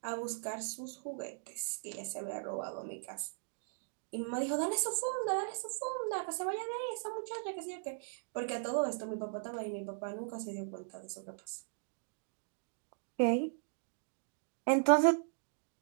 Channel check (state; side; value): silent; left; digital silence